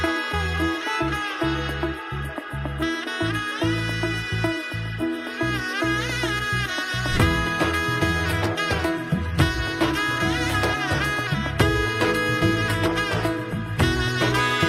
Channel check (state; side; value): identical; both; correlation 1.00